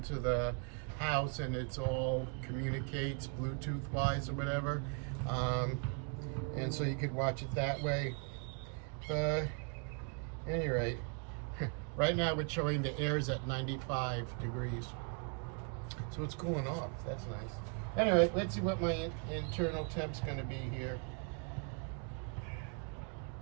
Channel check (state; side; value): quieter; left; 38.6 dB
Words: the house, and it's all communicates Bluetooth wise or whatever, and so you could watch it that way. Any rate, right now it's showing the air's at 95 degrees, so it's cooling off. That's nice. Anyway, let's see what my internal temp's going to be here.